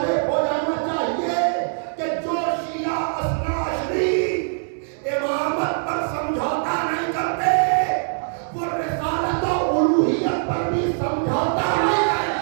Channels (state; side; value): silent; left; digital silence